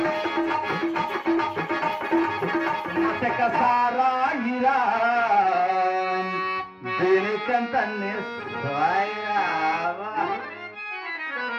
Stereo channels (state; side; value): identical; both; correlation 1.00